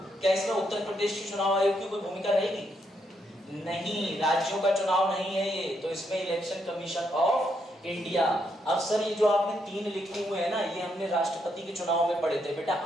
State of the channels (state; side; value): normal; both; correlation 0.77